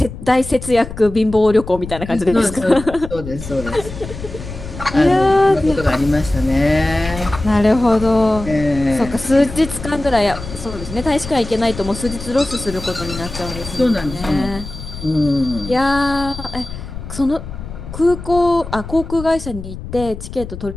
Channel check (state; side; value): noise; left; rumble, 11 dB below the sound